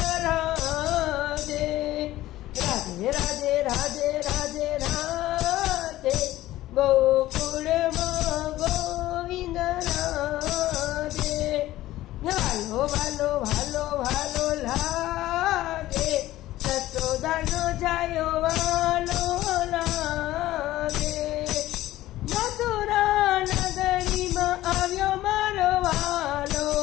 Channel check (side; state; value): right; quieter; 15.6 dB